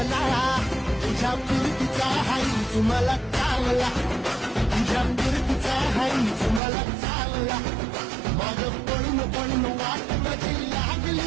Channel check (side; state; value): left; drops out; at 6.6 s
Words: तुझ्या प्रीतीचा हाय तुम्हाला चावला तुझ्या प्रीतीचा हाय तुम्हाला चावला मग पळून वाट माझी